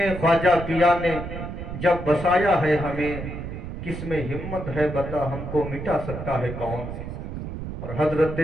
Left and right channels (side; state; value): right; noise; rumble, 7 dB below the sound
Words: خواجہ پیا نے جب بسایا ہے ہمیں، کس میں ہمت ہے بتا ہم کو مٹا سکتا ہے کون؟ اور حضرت